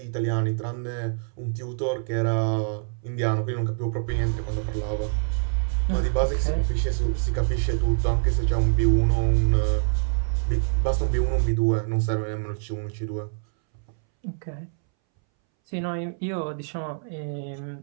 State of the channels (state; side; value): silent; left; 61 dB below the other